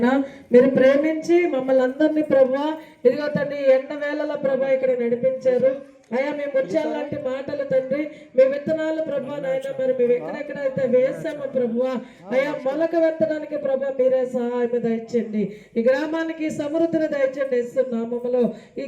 మీరు ప్రేమించి మమ్మల్ని అందరినీ ప్రభువా ఇదిగో తండ్రి ఎండ వేళల ప్రభా ఇక్కడ నడిపించారు. అయ్యా మేము ముత్యాల లాంటి మాటలు తండ్రి, మీ విత్తనాలు ప్రభా నాయన మరి మేము ఎక్కడెక్కడైతే వేసామో ప్రభువా అయ్యా మొలక వెత్తడానికి ప్రభా మీరే సహాయం దయచండి. ఈ గ్రామానికి సమృద్ధిని దయచండి నామములో. ఈ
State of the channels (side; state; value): both; identical; correlation 1.00